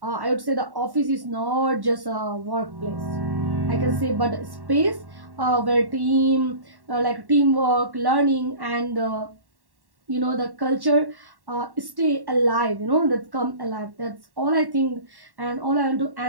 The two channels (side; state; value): left; late; 1.1 ms